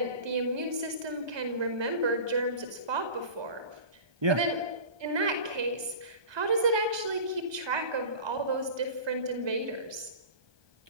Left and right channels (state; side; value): late; left; 1.2 ms